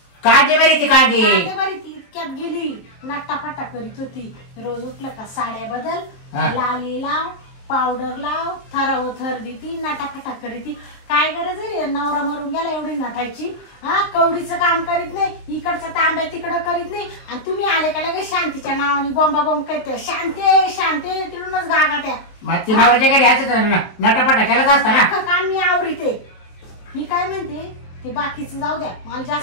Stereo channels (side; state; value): right; late; 22 ms